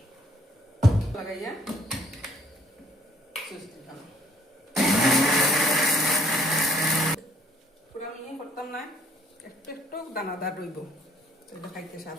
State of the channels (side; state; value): both; normal; correlation 0.62